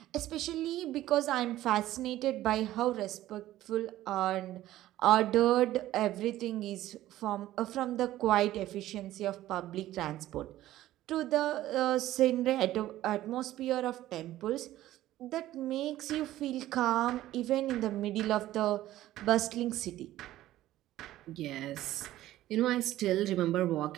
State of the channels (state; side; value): quieter; left; 14.6 dB